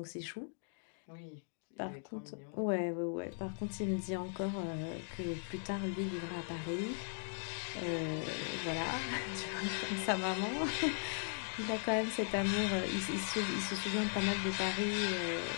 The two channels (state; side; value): silent; right; digital silence